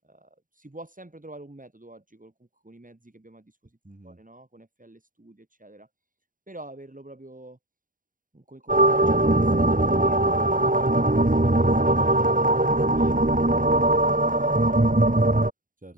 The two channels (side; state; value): left; late; 0.39 ms